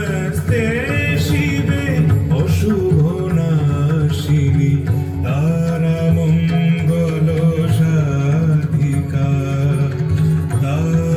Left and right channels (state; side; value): identical; both; correlation 1.00